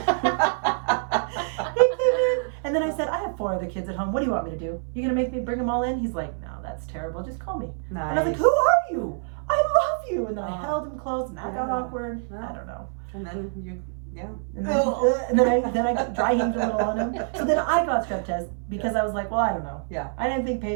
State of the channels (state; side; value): silent; left; 57 dB below the other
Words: He came in, and then I said, "I have 4 other kids at home. What do you want me to do? You gonna make me bring them all in?" He's like, "No, that's terrible. Just call me." Nice. And I was like, "Who are you? I love you." And then I Oh. held him close, and that got Yeah. awkward. Yeah. I don't know. And then you, yeah. And then I dry heaved a little on him. So then I got strep test because I was like, well, I don't know. Yeah. I didn't think